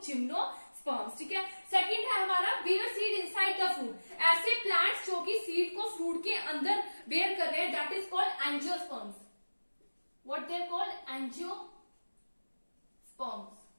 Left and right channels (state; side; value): inverted; both; correlation -1.00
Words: gymnosperms, ठीक है। सेकंड है हमारा bear seed inside the fruit, ऐसे प्लांट्स जो कि सीड को फ्रूट के अंदर बेयर कर रहे हैं, that is called angiosperms. What they are called? Angiosperms.